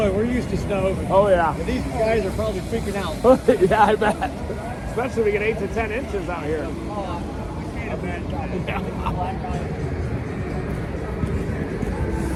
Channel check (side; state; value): both; identical; correlation 1.00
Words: We're used to snow. Oh, yeah. But these guys are probably freaking out. Yeah, I bet. Especially if we get 8 to 10 inches out here. I can't imagine.